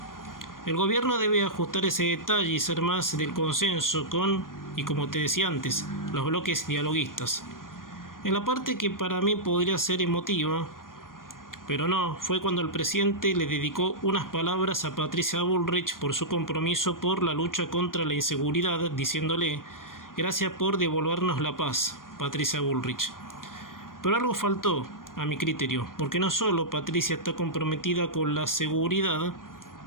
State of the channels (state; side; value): late; right; 0.90 ms